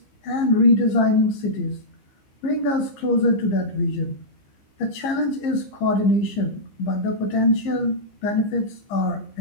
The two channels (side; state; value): right; late; 15 ms